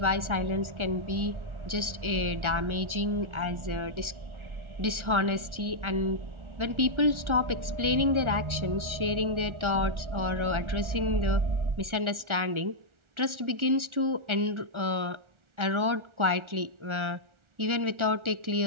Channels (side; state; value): left; late; 1.4 ms